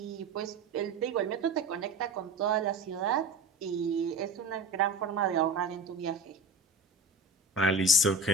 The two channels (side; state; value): left; quieter; 3.1 dB